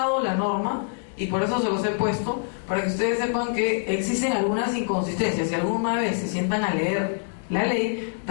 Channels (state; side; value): silent; right; digital silence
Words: la norma, y por eso se los he puesto, para que ustedes sepan que existen algunas inconsistencias. Si alguna vez se sientan a leer la ley,